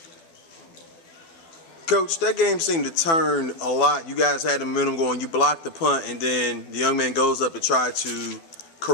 Coach, that game seemed to turn a lot. You guys had the momentum going. You blocked the punt, and then the young man goes up to try to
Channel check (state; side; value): late; right; 12 ms